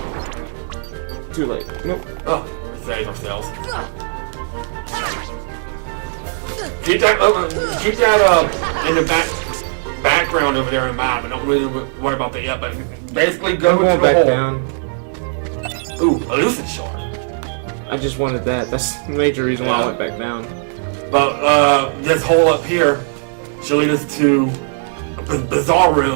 Too late. Nope. Oh, we save ourselves. Keep that in the background over there in mind. We don't really worry about that yet, but basically go into the hole. Down. Ooh, a lucid shard. I just wanted that. That's the major reason why I went back down. But this hole up here should lead us to a bizarre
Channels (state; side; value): silent; left; digital silence